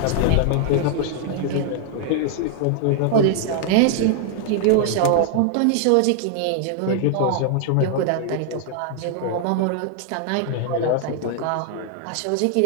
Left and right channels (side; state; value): both; different; correlation 0.00